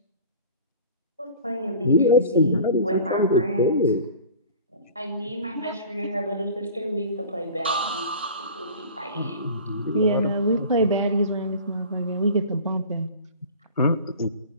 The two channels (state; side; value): inverted; both; correlation -0.40